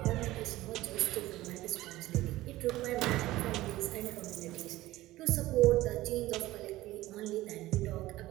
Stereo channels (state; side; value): quieter; left; 16.9 dB